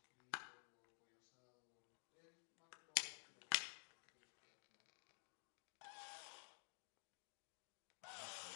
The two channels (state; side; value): silent; right; digital silence